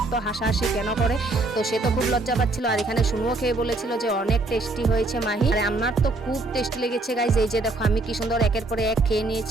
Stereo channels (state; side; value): quieter; left; 3.1 dB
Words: এত হাসাহাসি কেন করে। তো সে তো খুব লজ্জা পাচ্ছিল। আর এখানে শুনুও খেয়ে বলেছিল যে অনেক টেস্টি হয়েছে মাহি। আর আমার তো খুব টেস্টি লেগেছে গাইস। এই যে দেখো আমি কি সুন্দর একের পরে এক খেয়ে